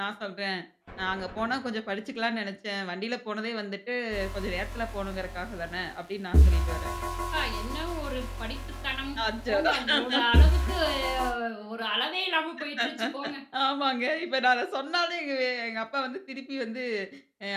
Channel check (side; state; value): both; identical; correlation 1.00